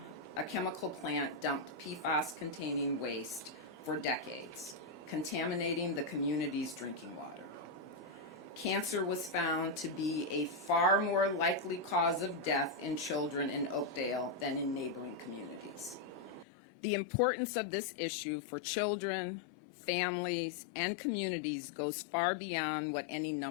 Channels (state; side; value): drops out; right; at 16.4 s